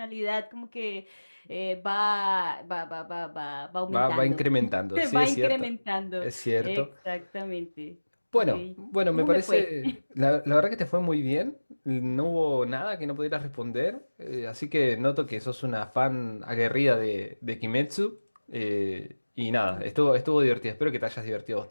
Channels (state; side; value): inverted; both; correlation -1.00